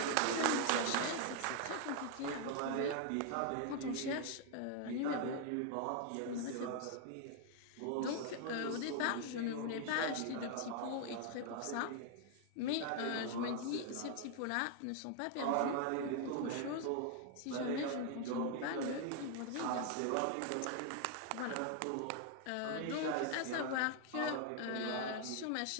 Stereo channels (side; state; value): both; different; correlation 0.00